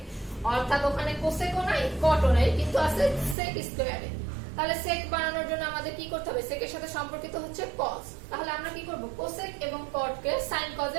অর্থাৎ ওখানে cosec ও নাই cot ও নাই, কিন্তু আছে sec স্কয়ার a। তাহলে sec বানানোর জন্য আমাদের কি করতে হবে, sec এর সাথে সম্পর্কিত হচ্ছে cos। তাহলে আমরা কি করব, cosec এবং cot কে sin cos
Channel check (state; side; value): drops out; left; at 3.4 s